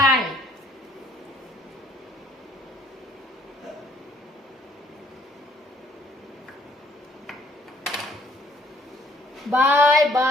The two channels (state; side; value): normal; both; correlation 0.63